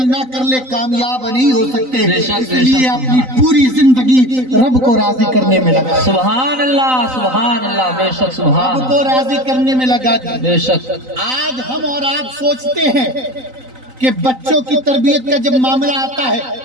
نہ کر لے کامیاب نہیں ہو سکتے، اس لیے اپنی پوری زندگی رب کو راضی کرنے میں لگا۔ سبحان اللہ، سبحان اللہ، بے شک سبحان، رب کو راضی کرنے میں لگا۔ بے شک آج ہم اور آپ سوچتے ہیں کہ بچوں کی تربیت کا جب معاملہ آتا ہے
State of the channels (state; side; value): late; left; 3.9 ms